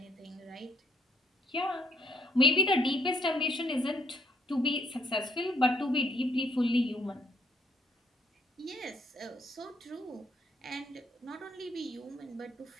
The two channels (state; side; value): normal; both; correlation 0.69